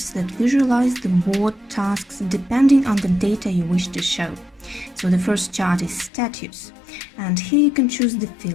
that visualize the board tasks depending on the data you wish to show. So the first chart is status, and here you can choose the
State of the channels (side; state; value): right; drops out; at 6.1 s